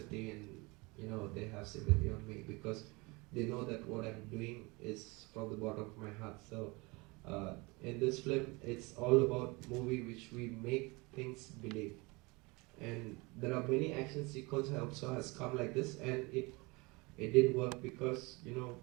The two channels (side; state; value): left; quieter; 25.7 dB